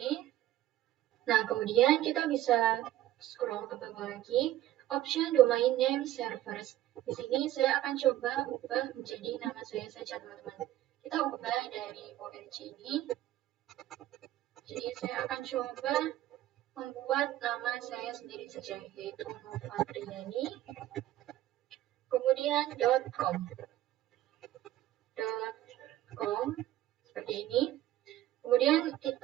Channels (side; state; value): left; quieter; 14.1 dB